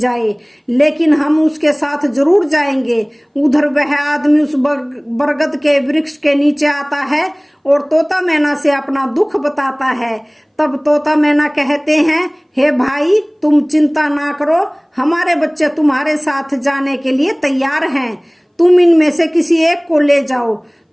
लेकिन हम उसके साथ जरूर जाएंगे। उधर वह आदमी उस बरगद के वृक्ष के नीचे आता है और तोता मैना से अपना दुख बताता है। तब तोता मैना कहते हैं, हे भाई, तुम चिंता ना करो, हमारे बच्चे तुम्हारे साथ जाने के लिए तैयार हैं। तुम इनमें से किसी एक को ले जाओ।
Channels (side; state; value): both; identical; correlation 1.00